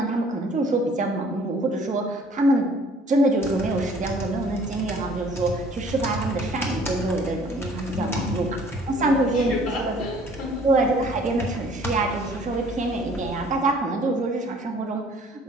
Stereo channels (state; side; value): normal; both; correlation 0.55